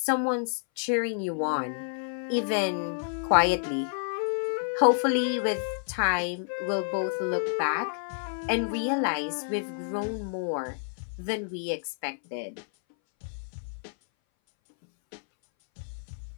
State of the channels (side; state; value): right; silent; 58 dB below the other